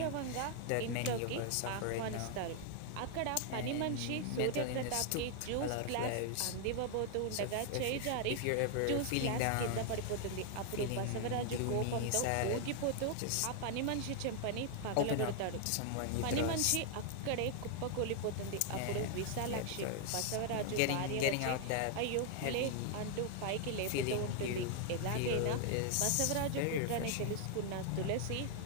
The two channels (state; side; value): different; both; correlation 0.00